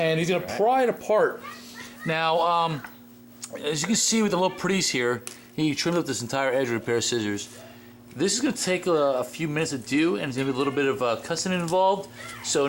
he's going to pry it apart. Now, as you can see with the little pretties here, he trimmed up this entire edge with a pair of scissors. This is going to take a few minutes to do, and there's going to be a little bit of cussing involved. So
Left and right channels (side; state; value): both; identical; correlation 1.00